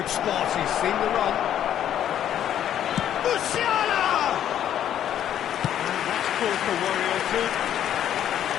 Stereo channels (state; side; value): quieter; right; 10.5 dB